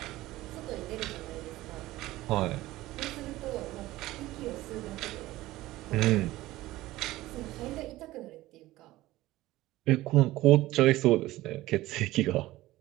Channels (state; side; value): quieter; left; 17.1 dB